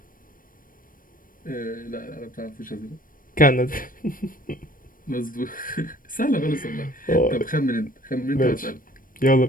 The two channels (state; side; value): late; right; 0.40 ms